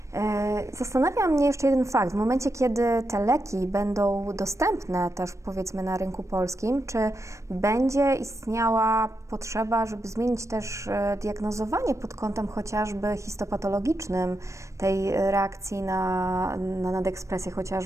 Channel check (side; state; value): left; late; 0.15 ms